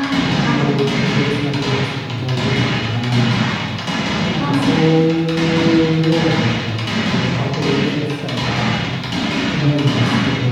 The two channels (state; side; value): identical; both; correlation 1.00